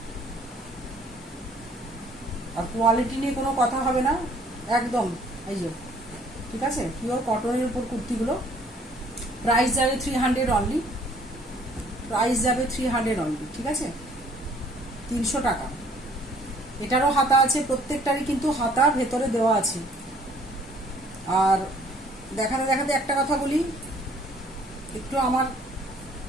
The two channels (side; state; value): both; normal; correlation 0.59